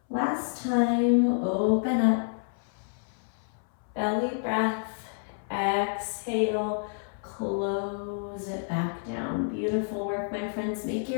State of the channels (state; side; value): silent; right; 59 dB below the other